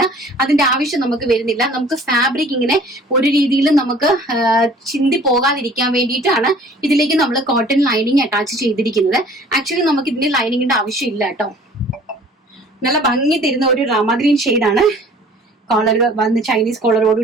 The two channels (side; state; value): both; normal; correlation 0.51